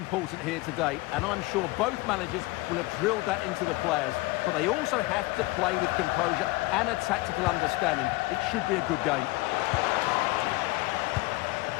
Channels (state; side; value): quieter; right; 21.5 dB